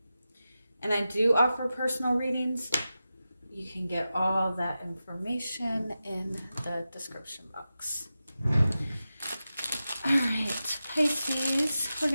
And I do offer personal readings. You can get all that information in the description box. All right, Pisces, we're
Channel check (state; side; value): inverted; both; correlation -0.92